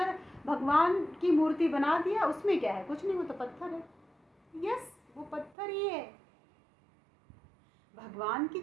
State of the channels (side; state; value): left; drops out; at 5.6 s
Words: भगवान की मूर्ति बना दिया, उसमें क्या है, कुछ नहीं, वो तो पत्थर है। यस, वो पत्थर ही है। भगवान की